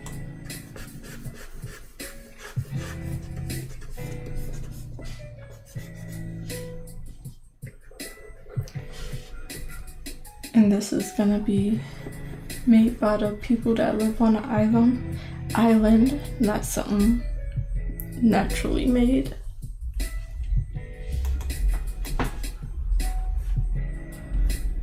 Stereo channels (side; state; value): both; identical; correlation 1.00